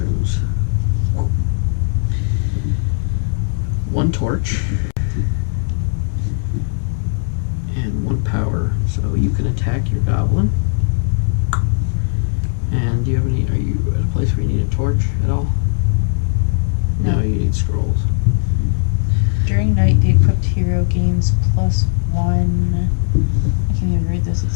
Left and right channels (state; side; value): silent; right; 67 dB below the other